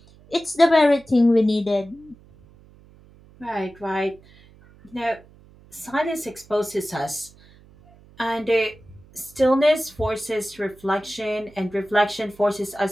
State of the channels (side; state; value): right; noise; hum, 26 dB below the sound